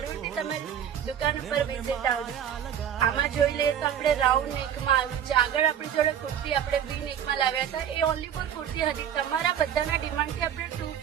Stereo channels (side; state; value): left; quieter; 9.3 dB